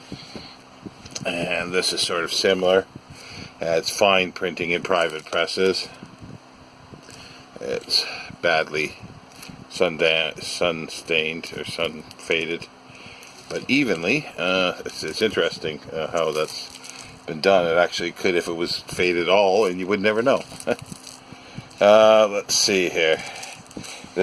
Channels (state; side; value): identical; both; correlation 1.00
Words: And this is sort of similar. It's fine printing in private presses. It's badly sun-stained or sun-faded, but evenly. It's interesting how that's been done. It actually could if it was faded all, and you would never know. Let's see here.